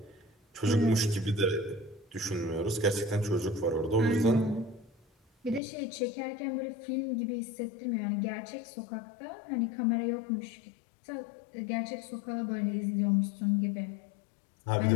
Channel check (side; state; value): right; drops out; at 5.6 s